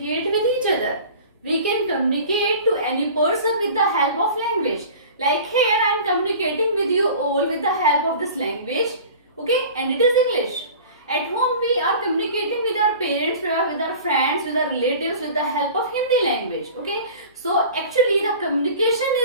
with each other. We can communicate to any person with the help of language. Like here, I am communicating with you all with the help of this language. Okay, and it is English. At home, we are communicating with our parents, with our friends, with our relatives with the help of Hindi language. Okay, so actually the communication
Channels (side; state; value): both; inverted; correlation -0.41